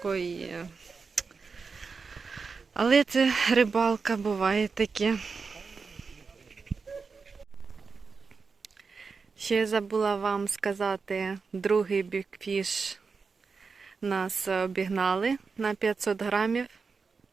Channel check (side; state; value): left; quieter; 4.9 dB